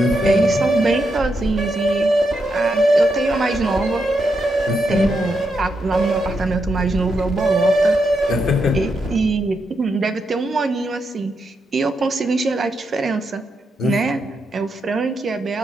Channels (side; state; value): both; normal; correlation 0.83